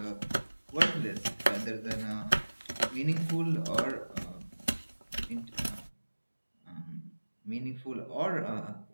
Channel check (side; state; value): both; inverted; correlation -1.00